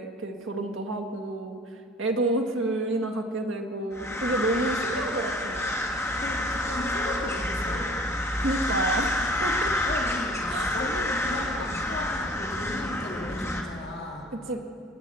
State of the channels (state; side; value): normal; both; correlation 0.47